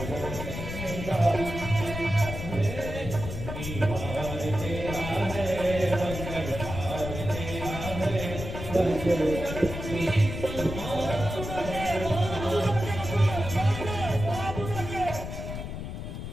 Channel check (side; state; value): left; noise; rumble, 7 dB below the sound